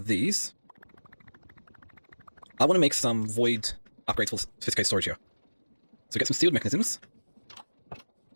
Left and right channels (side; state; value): both; inverted; correlation -1.00